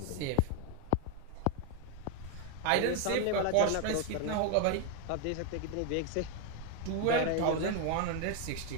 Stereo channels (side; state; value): both; different; correlation 0.01